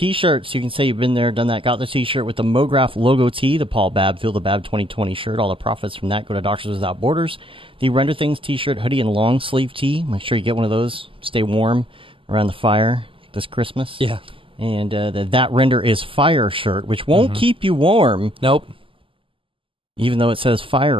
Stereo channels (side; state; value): left; late; 0.25 ms